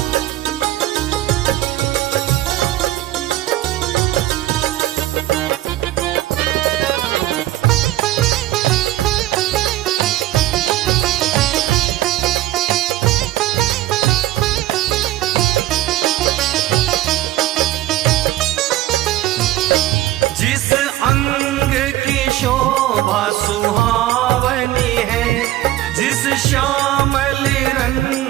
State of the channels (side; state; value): left; quieter; 15.1 dB